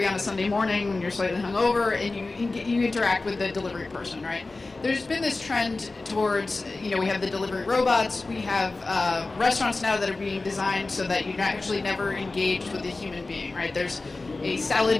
on a Sunday morning when you're slightly hungover, and you interact with the delivery person, right? There's been this trend towards, we have the delivery robots, we have restaurants now that are being designed so that you're actually never engaged with a human being, right? There's a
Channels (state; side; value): quieter; right; 3.4 dB